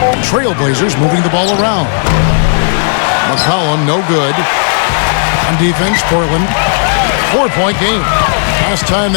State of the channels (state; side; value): silent; right; digital silence